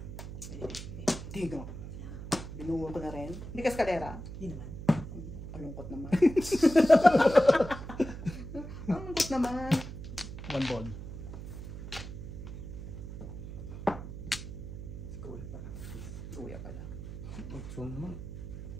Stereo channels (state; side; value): noise; right; hum, 9 dB below the sound